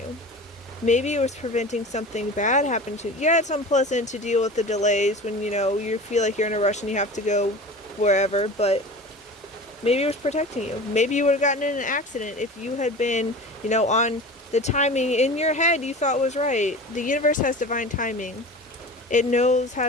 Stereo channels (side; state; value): both; normal; correlation 0.35